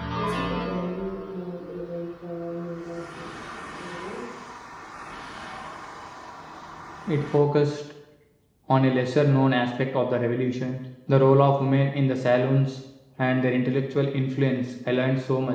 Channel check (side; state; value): both; identical; correlation 1.00